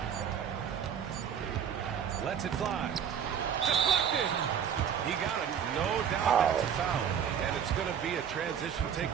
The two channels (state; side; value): quieter; left; 8.3 dB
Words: Lets it fly. Deflected. He got it. No doubt that's a foul. And it's going to be a transition take